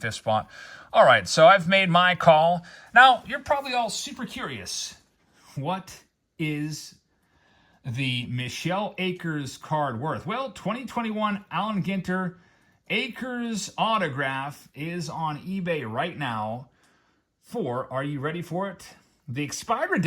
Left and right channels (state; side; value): identical; both; correlation 1.00